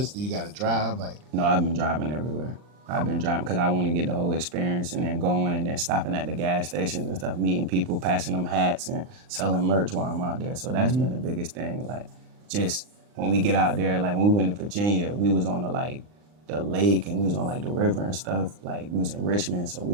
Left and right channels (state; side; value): late; left; 39 ms